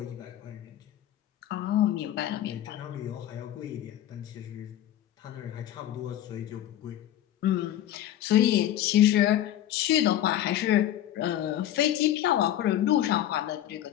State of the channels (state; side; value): quieter; right; 12.1 dB